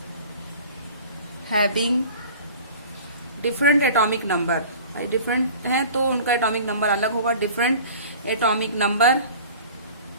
having different atomic number। Different है तो उनका एटॉमिक नंबर अलग होगा। डिफरेंट एटॉमिक नंबर,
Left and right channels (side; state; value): both; inverted; correlation -0.43